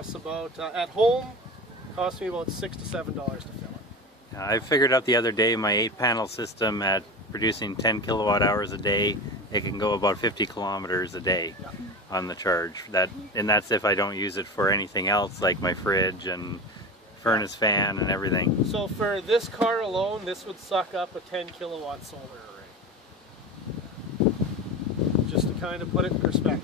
about at home. It costs me about $6 to $7 to fill it. I figured out the other day my 8-panel system at producing 10 kilowatt hours a day, it can go about 50 kilometers a day on the charge. And that's if I don't use it for anything else like my fridge and furnace fan and everything. So for this car alone, this would suck up a 10 kilowatt solar array. Just to kind of put it in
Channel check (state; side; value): normal; both; correlation 0.28